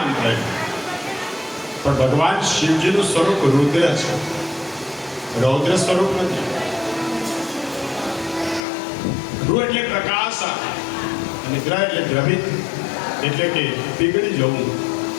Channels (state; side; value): drops out; right; at 8.6 s